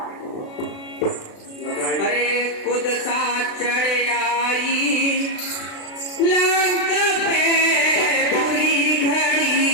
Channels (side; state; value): right; late; 36 ms